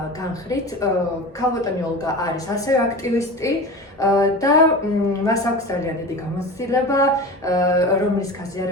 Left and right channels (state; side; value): normal; both; correlation 0.31